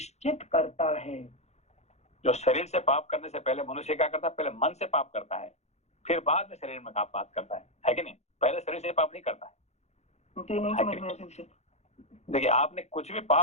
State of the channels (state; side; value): late; right; 0.32 ms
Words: करता है। जो शरीर से पाप करने से पहले मनुष्य क्या करता है? पहले मन से पाप करता है, फिर बाद में शरीर में पाप करता है कि नहीं? पहले शरीर से पाप नहीं करता है। देखिए, आपने कुछ भी